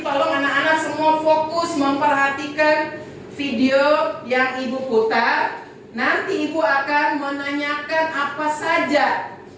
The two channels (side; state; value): both; identical; correlation 1.00